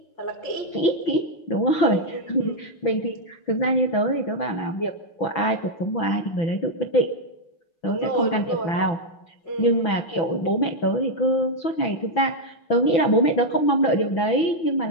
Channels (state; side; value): late; right; 6.0 ms